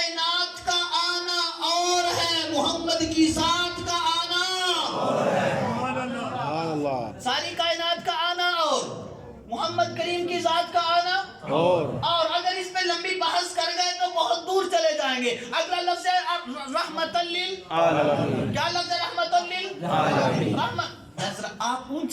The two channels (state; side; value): identical; both; correlation 1.00